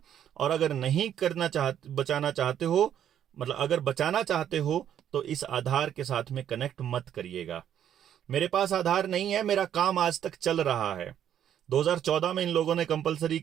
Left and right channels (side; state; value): left; quieter; 10.0 dB